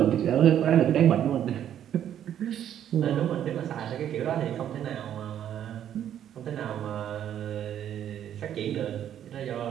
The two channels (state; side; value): quieter; left; 10.3 dB